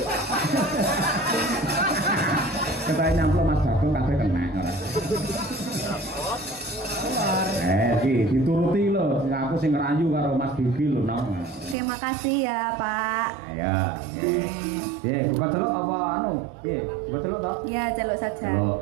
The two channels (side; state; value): left; drops out; at 11.8 s